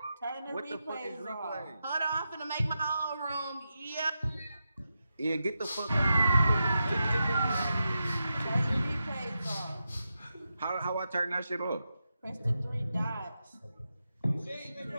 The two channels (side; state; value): both; inverted; correlation -0.88